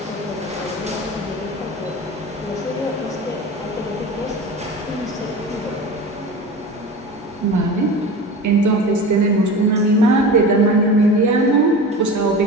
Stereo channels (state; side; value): normal; both; correlation 0.32